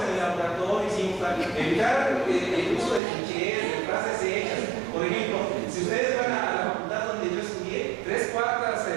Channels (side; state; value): left; drops out; at 3.0 s